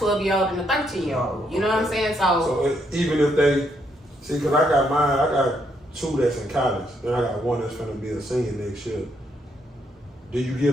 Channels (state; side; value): normal; both; correlation 0.75